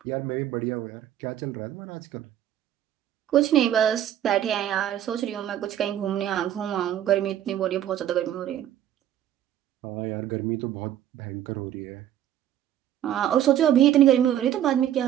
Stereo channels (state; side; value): quieter; left; 11.4 dB